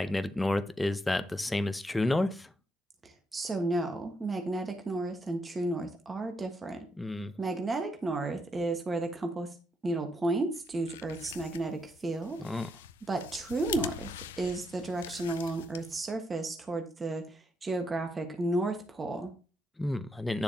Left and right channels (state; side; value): normal; both; correlation 0.79